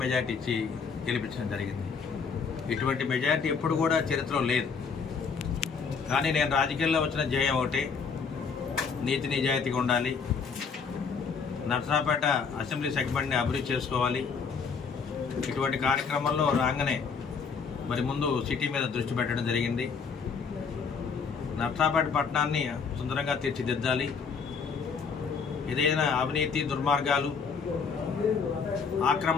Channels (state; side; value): quieter; right; 5.7 dB